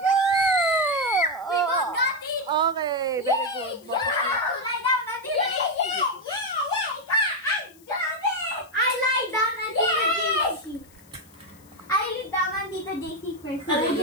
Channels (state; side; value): noise; left; hiss, 27 dB below the sound